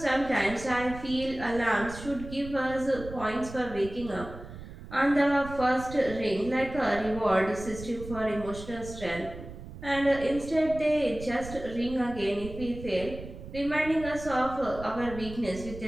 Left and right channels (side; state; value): right; noise; rumble, 13 dB below the sound